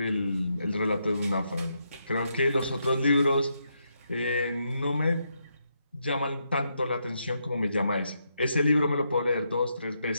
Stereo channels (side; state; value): both; inverted; correlation -0.80